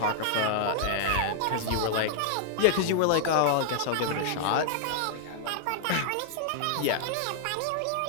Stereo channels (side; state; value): both; different; correlation -0.01